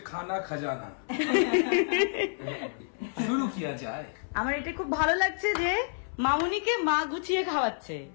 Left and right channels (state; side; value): silent; right; 59 dB below the other